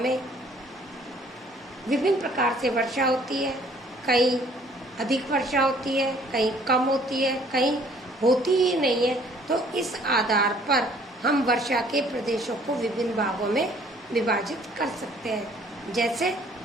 विभिन्न प्रकार से वर्षा होती है। कहीं अधिक वर्षा होती है, कहीं कम होती है, कहीं होती ही नहीं है। तो इस आधार पर हम वर्षा के प्रदेशों को विभिन्न भागों में विभाजित कर सकते हैं। जैसे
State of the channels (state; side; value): normal; both; correlation 0.58